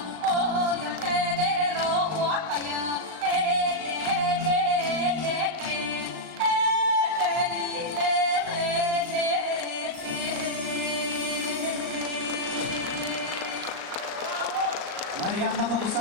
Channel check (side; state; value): left; late; 38 ms